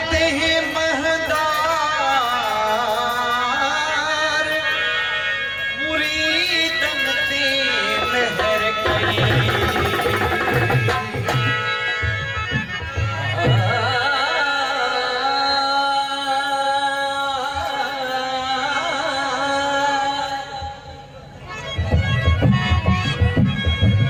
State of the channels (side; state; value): both; identical; correlation 1.00